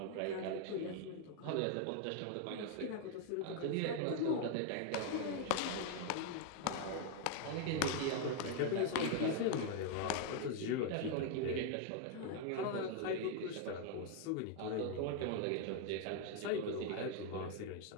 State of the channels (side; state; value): both; different; correlation 0.00